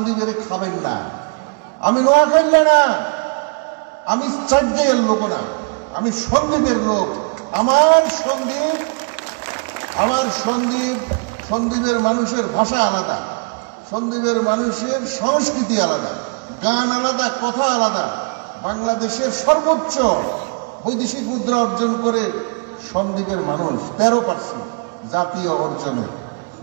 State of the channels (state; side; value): quieter; left; 37.0 dB